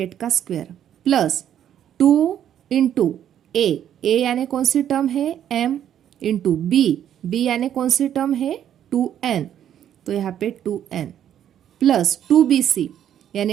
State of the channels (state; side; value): quieter; left; 10.2 dB